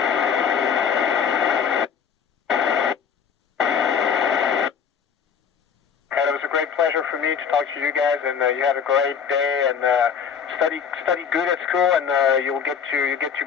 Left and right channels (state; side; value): quieter; right; 7.1 dB